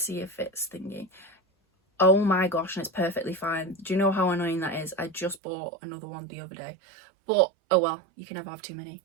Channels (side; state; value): left; drops out; at 5.4 s